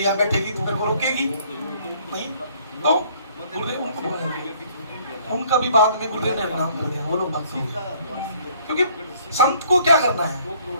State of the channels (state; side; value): inverted; both; correlation -0.60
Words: बैठेगी तो मेरे को रोकेगी नहीं। तो गुरुदेव उनको बोलेंगे, उनका भी बाद में गुरुदेव ने नाम कर दिया, वो लोग भक्त हो गए। क्योंकि संत को क्या करना है,